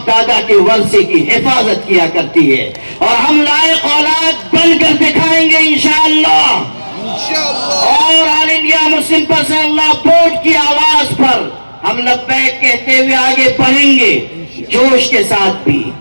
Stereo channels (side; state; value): both; inverted; correlation -1.00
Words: دادا کے ورثے کی حفاظت کیا کرتی ہے, اور ہم لائق اولاد بن کر دکھائیں گے انشاءاللہ. اور آل انڈیا مسلم پرسنل لا بورڈ کی آواز پر ہم لبیک کہتے ہوئے آگے بڑھیں گے, جوش کے ساتھ بھی,